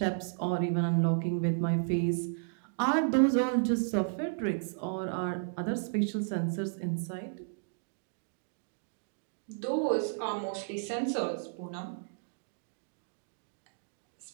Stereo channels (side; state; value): left; silent; digital silence